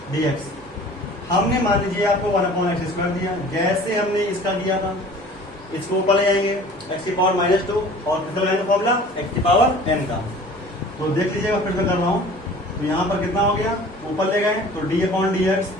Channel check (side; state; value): both; normal; correlation 0.46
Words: डी एक्स हमने मान लीजिए आपको 1 अपॉन एक्स स्क्वायर दिया, जैसे हमने इसका किया था इसको ऊपर ले जाएंगे एक्स की पावर -2 और कितना लगाएंगे फॉर्मूला एक्स की पावर n का। तो देख लीजिएगा फिर से कर रहा हूं, तो यहाँ पर कितना हो गया, ऊपर ले गए तो डी अपॉन डी एक्स,